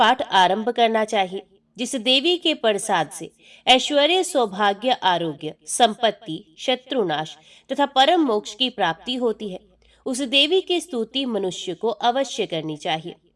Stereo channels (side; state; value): both; identical; correlation 1.00